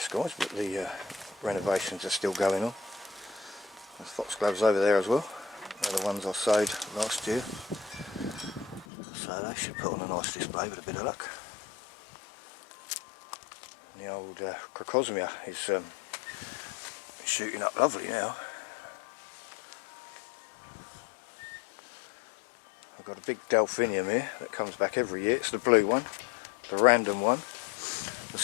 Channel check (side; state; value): right; drops out; at 8.8 s